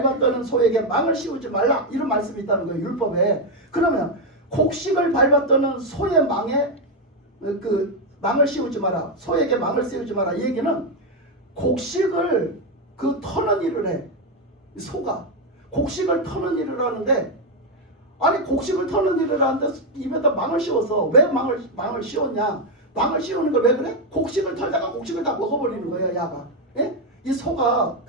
소에게 망을 씌우지 말라, 이런 말씀이 있다는 거예요. 율법에. 그러면 곡식을 밟았다는 소의 망에 그 망을 씌우지 마라, 소에게 망을 씌우지 마라, 이 얘기는 곡식을 터는 일을 해. 소가 곡식을 터는 일을 하는데, 아니 곡식을 터는 일을 하는데 입에다 망을 씌워서 왜 망을 씌웠냐? 망을 씌우는 걸 왜 그래? 곡식을 털다가 곡식을 다 먹어버리는 거예요, 야가. 예? 이 소가,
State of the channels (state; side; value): normal; both; correlation 0.04